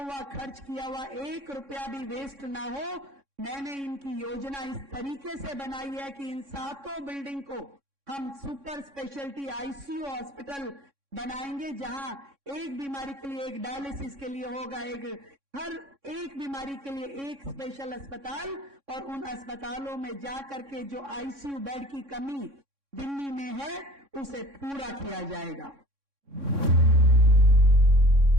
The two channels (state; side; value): late; left; 3.6 ms